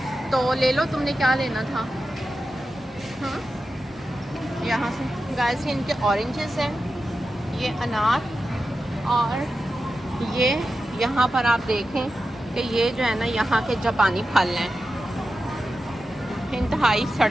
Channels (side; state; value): both; normal; correlation 0.91